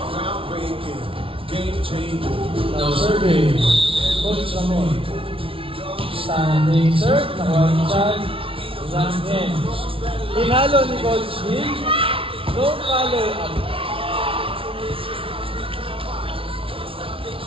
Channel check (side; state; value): left; late; 0.26 ms